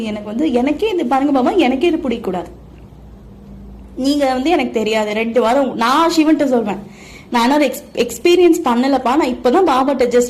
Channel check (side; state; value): both; identical; correlation 1.00